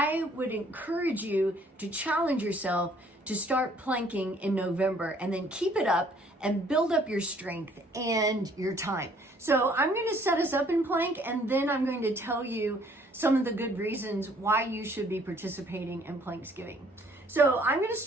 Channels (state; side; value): normal; both; correlation 0.60